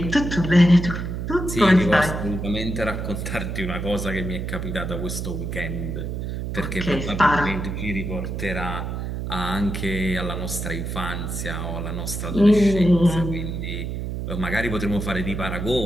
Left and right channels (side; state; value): right; noise; hum, 4 dB below the sound